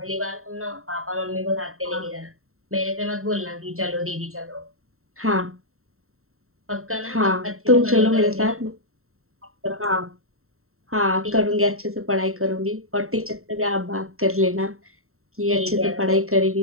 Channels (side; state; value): left; late; 0.63 ms